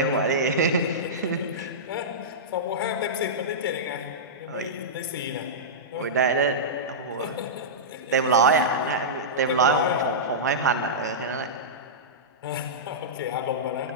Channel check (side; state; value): both; normal; correlation -0.14